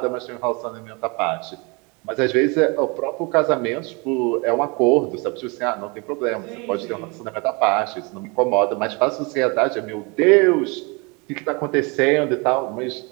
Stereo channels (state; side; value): quieter; left; 29.4 dB